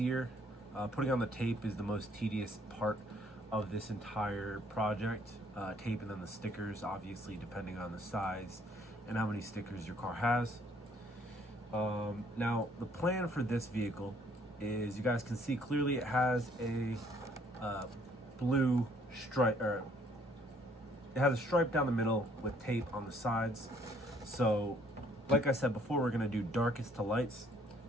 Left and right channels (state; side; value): normal; both; correlation 0.63